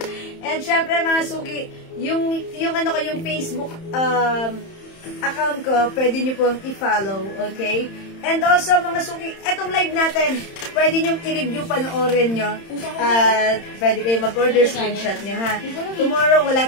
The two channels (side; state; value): right; late; 31 ms